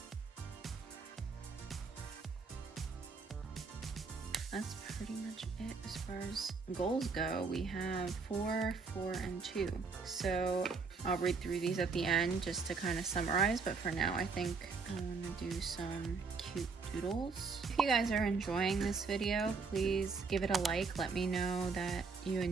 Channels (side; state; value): left; quieter; 4.8 dB